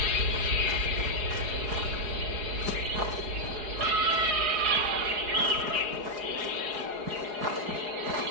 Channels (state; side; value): late; left; 4.8 ms